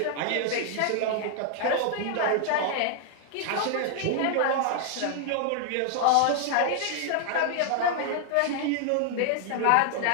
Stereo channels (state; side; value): different; both; correlation 0.00